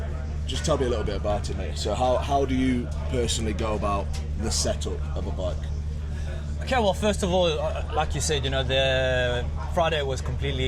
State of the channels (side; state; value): both; identical; correlation 1.00